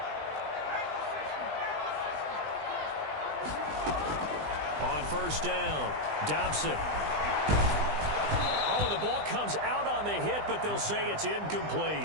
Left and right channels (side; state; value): left; late; 20 ms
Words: First down, Dobson. Oh, the ball comes out on the hit, but they'll say it's